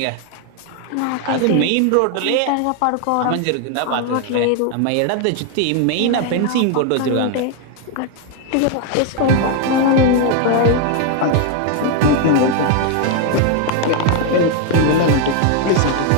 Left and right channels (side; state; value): both; different; correlation 0.01